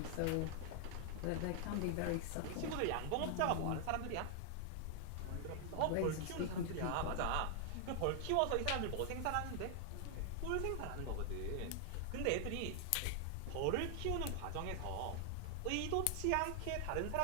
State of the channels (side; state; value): both; different; correlation 0.00